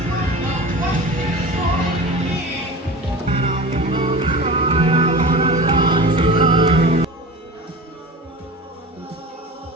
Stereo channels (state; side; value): normal; both; correlation 0.33